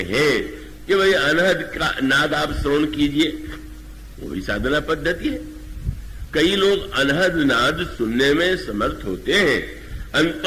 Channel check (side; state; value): both; identical; correlation 1.00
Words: कि भाई अनहद का नाद आप श्रवण कीजिए, वही साधना पद्धति है। कई लोग अनहद नाद सुनने में समर्थ होते हैं।